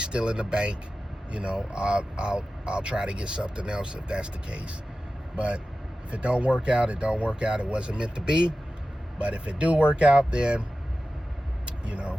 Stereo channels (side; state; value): both; normal; correlation 0.94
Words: still in the bank. I'll try to get something else if that's the case. But if it don't work out, it don't work out. It wasn't meant to be. But if it do work out, then